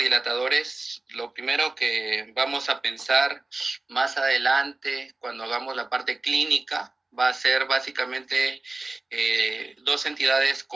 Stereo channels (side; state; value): left; quieter; 3.1 dB